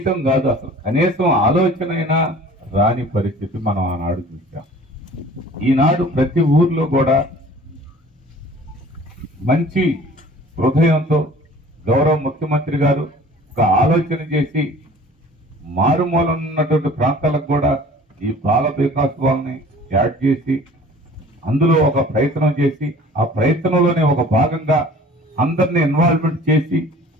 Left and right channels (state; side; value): normal; both; correlation 0.47